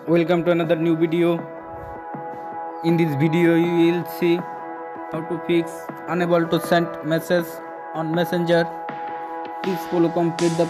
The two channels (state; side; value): identical; both; correlation 1.00